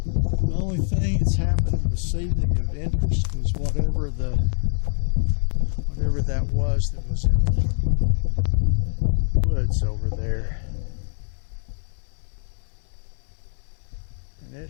The only thing that's happened this evening of interest was whatever that was in the woods over there. And it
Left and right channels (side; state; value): right; silent; 62 dB below the other